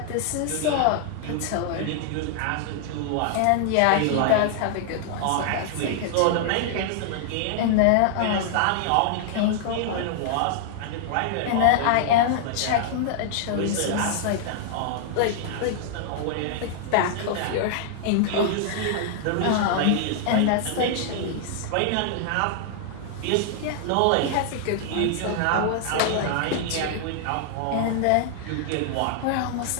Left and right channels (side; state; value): both; different; correlation -0.01